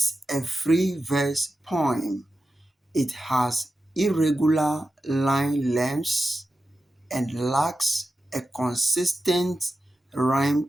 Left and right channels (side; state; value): both; normal; correlation 0.91